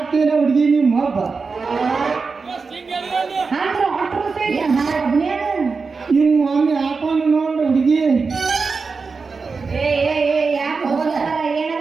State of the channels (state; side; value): quieter; left; 4.7 dB